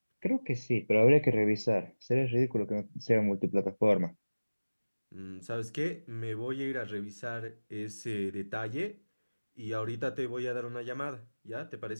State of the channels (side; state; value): both; inverted; correlation -1.00